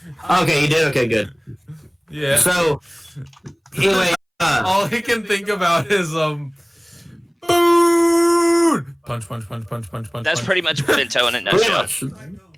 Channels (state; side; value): identical; both; correlation 1.00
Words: Okay, you did? Okay, good. Yeah. So, anyway, all he can think about is, food! Punch. That's pretty much Bento in a nutshell.